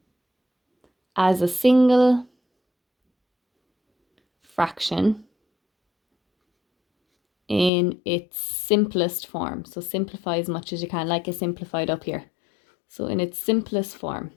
as a single fraction in its simplest form. So simplify as much as you can, like I simplified up here. So in its simplest form.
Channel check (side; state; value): right; drops out; at 7.7 s